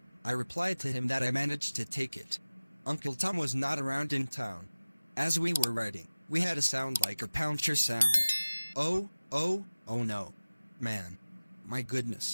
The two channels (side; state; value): both; inverted; correlation -0.97